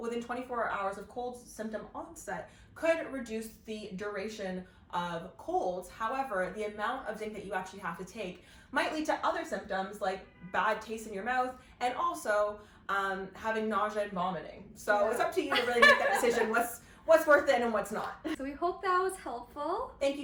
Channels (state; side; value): identical; both; correlation 1.00